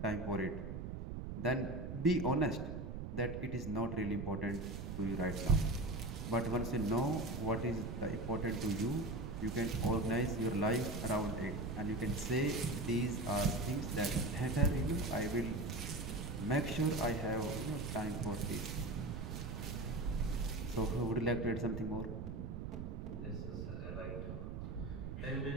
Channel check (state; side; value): noise; right; rumble, 6 dB below the sound